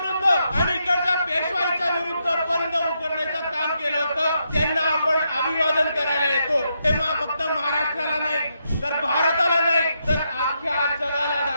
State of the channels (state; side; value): inverted; both; correlation -0.81